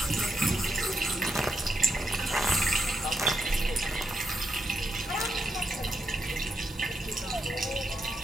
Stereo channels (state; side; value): normal; both; correlation 0.83